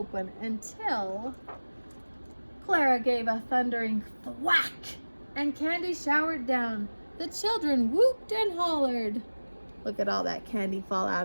until Clara gave a thundering thwack and candy showered down. The children whooped and hollered. Look at all that candy fall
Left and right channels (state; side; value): inverted; both; correlation -1.00